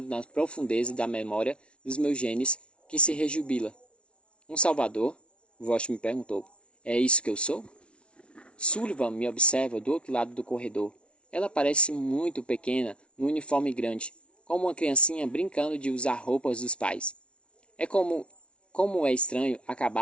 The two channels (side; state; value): right; late; 0.059 ms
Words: na profundeza da memória dos meus genes, que se rejubila. Um salvador? Vosh me perguntou. É isso que eu sou? Sullivan me observa do outro lado do corredor. Ela parece muito pequena, no uniforme grande, como uma criancinha brincando de usar roupas dos pais. É como é estranho